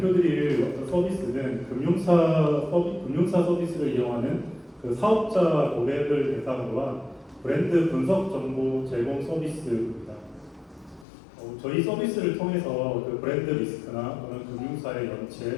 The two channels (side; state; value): right; drops out; at 11.1 s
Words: 어떤 서비스는 금융사 서비스를 이용하는 그 사업자 고객을 대상으로 한 브랜드 분석 정보 제공 서비스입니다. 저희 서비스를 통해서 그 브랜드 리스크나 또는 금융사의